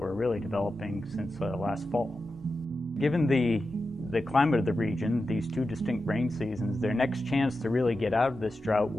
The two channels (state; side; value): normal; both; correlation 0.91